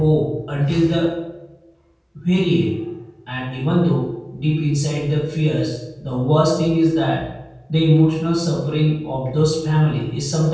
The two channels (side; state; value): both; identical; correlation 1.00